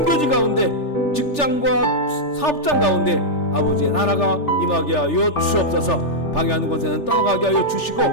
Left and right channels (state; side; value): late; right; 3.4 ms